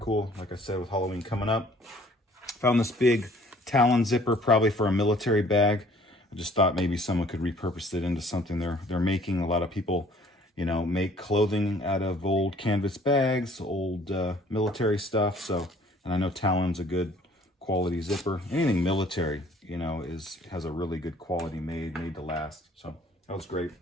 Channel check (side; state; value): both; normal; correlation 0.56